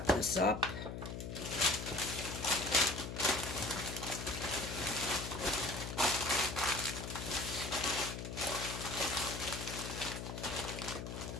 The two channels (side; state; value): left; noise; hum, 6 dB below the sound